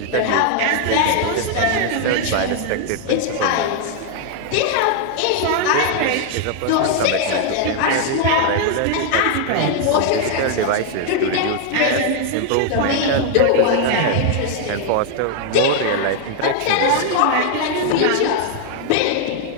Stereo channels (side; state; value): both; different; correlation 0.00